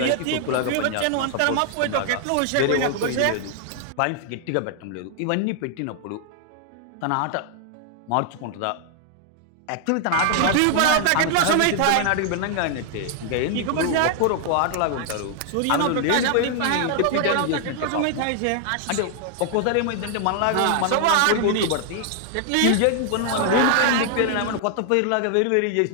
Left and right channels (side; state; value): both; different; correlation 0.00